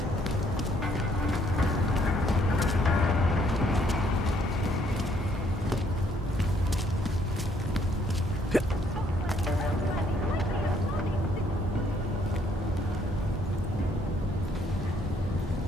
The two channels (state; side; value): normal; both; correlation 0.67